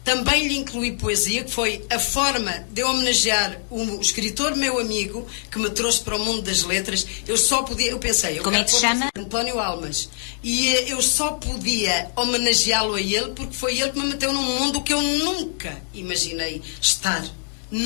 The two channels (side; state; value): right; silent; 63 dB below the other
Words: Também lhe incluí poesia, que foi a forma de eu homenagear o escritor meu amigo que me trouxe para o mundo das letras. Eu pensei... Como é que se chama? António Almas. E eu só podia homenageá-lo a ele porque foi ele que me meteu num mundo que eu nunca imaginei estar.